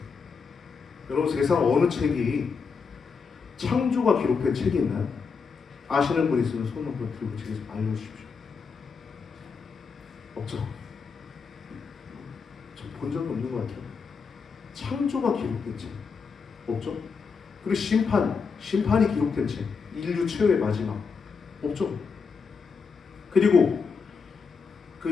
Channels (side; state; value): right; quieter; 5.4 dB